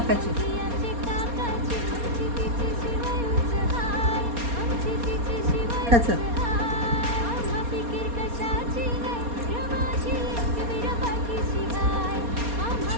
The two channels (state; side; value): late; left; 4.2 ms